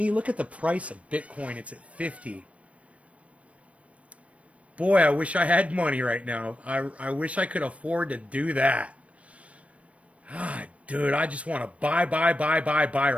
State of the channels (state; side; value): late; left; 0.064 ms